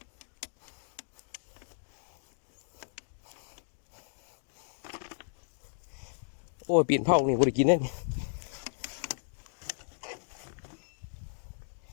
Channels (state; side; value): silent; right; digital silence